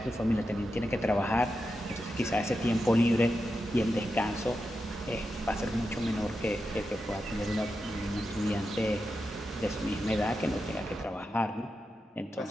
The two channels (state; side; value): normal; both; correlation 0.88